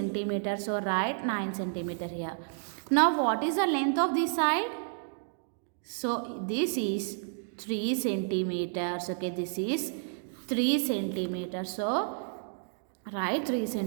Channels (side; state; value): left; silent; digital silence